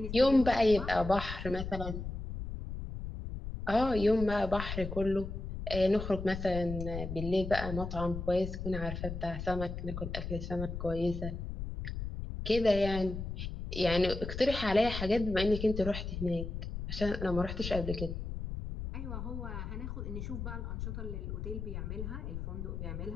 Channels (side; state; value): left; noise; rumble, 6 dB below the sound